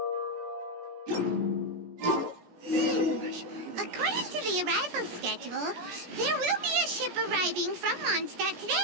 According to the arrival schedule, there will be a ship arriving from Mondstadt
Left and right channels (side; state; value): left; late; 17 ms